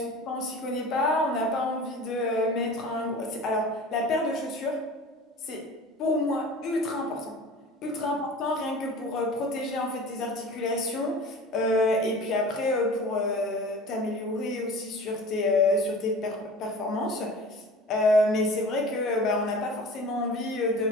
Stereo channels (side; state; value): both; normal; correlation 0.39